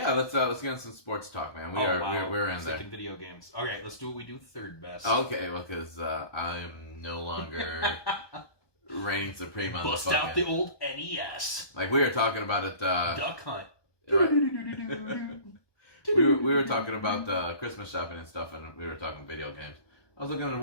Let's get into some sports talk, man. We're in there. Second video games. Okay. Let's do what we do third best. Okay. Well, because I am no longer reigning supreme on Bust the out the old NES. Like we were talking about it. Duck Hunt. Right. we were talking about Christmas shopping and stuff, and we were talking video games. I was looking at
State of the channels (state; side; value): late; right; 1.2 ms